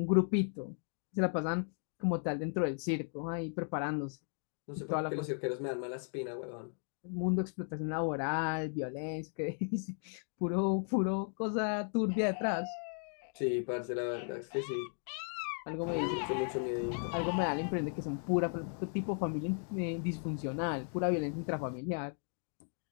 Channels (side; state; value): right; silent; 54 dB below the other